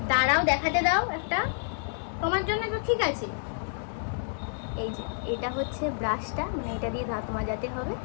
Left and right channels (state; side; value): silent; right; digital silence